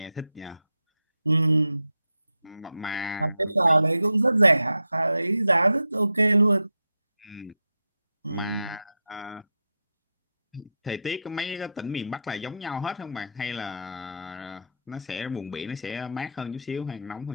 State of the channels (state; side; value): inverted; both; correlation -0.81